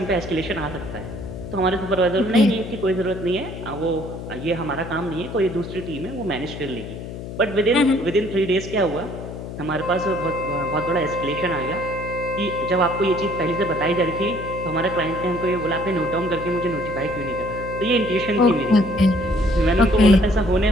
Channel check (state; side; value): noise; left; hum, 9 dB below the sound